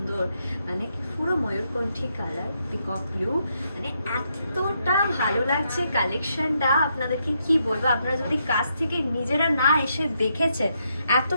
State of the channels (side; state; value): both; inverted; correlation -0.78